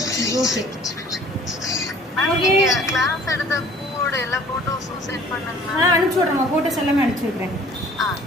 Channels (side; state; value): both; normal; correlation 0.52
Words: Okay okay. அனுப்பிச்சி விட்றேம்மா, ஃபோட்டோஸ் எல்லாமே அனுப்பிச்சி விட்றேன்.